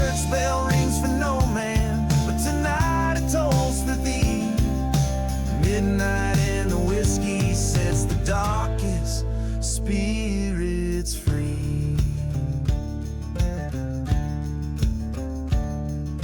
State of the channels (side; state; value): both; identical; correlation 1.00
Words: bell rings for no man, but tonight it tolls for thee. Midnight in the whiskey sets the darkest spirits free.